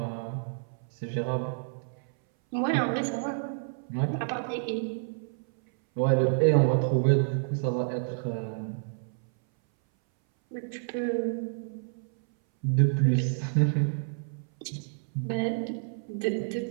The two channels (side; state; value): left; silent; 59 dB below the other